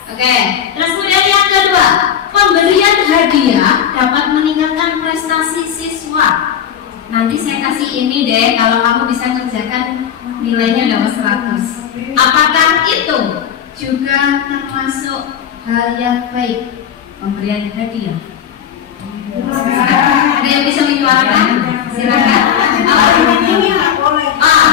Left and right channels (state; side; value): quieter; right; 8.9 dB